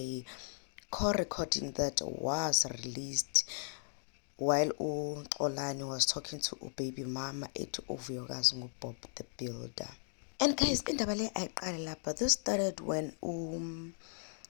call recording that was released while Xolani was talking to baby mama at vuyokazi Bob the Builder. And guys, indaba le ayiqale lapha. This started when Xolani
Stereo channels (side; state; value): right; silent; digital silence